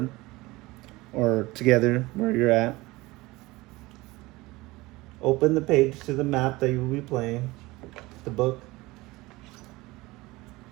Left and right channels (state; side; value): quieter; left; 20.9 dB